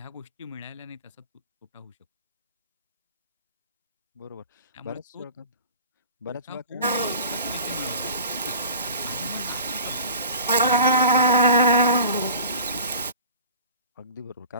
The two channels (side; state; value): both; inverted; correlation -0.41